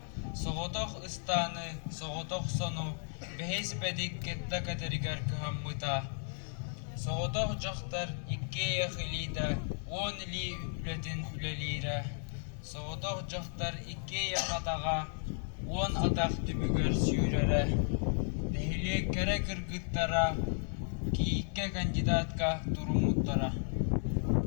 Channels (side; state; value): right; silent; 55 dB below the other